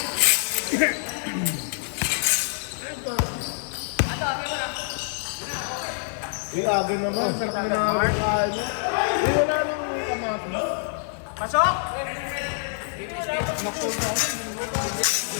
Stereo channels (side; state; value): right; silent; digital silence